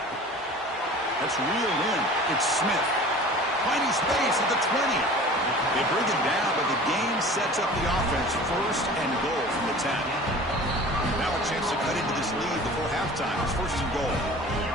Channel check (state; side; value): normal; both; correlation 0.42